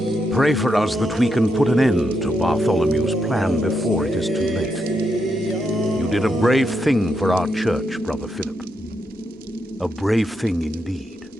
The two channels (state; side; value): normal; both; correlation 0.82